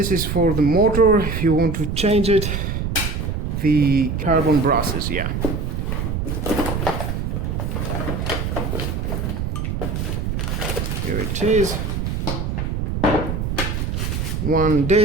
is for the motor, if you want to change it. The carbon brushes, yeah. Here it is. One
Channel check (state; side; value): noise; right; rumble, 2 dB below the sound